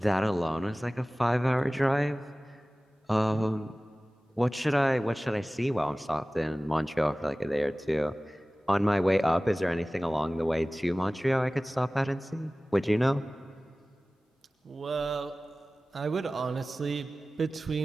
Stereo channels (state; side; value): normal; both; correlation 0.97